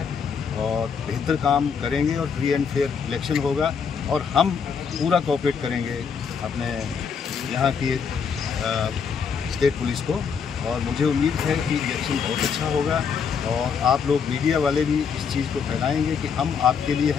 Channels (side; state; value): right; quieter; 6.4 dB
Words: और बेहतर काम करेंगे और फ्री एंड फेयर इलेक्शन होगा. और हम पूरा कोऑपरेट करेंगे अपने यहाँ की स्टेट पुलिस को. और मुझे उम्मीद है कि इलेक्शन बहुत अच्छा होगा और आप लोग मीडिया वाले भी इस चीज़ को फैलाएंगे कि हम आपके लिए